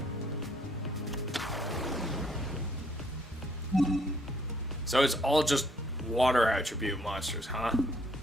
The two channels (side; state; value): both; normal; correlation 0.66